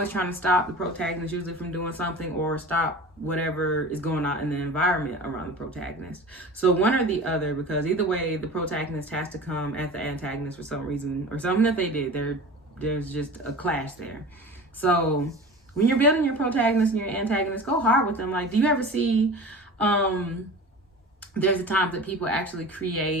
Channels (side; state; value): both; normal; correlation 0.36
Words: trying to stop the protagonist, usually from doing something, or stop whatever is going on in the environment around the protagonist. So one or the other, because either way, the protagonist has to come at the antagonist for some reason, or something that they did. There's just a clash there. So when you're building your protagonist and your antagonist, go hard with them. Like, do you ever see, there's a time that people actually